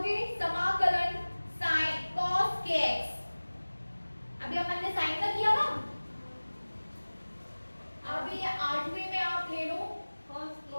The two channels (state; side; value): inverted; both; correlation -1.00